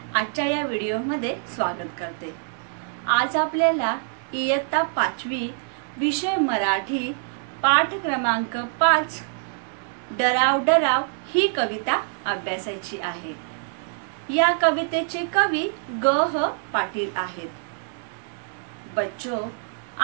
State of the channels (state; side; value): silent; left; digital silence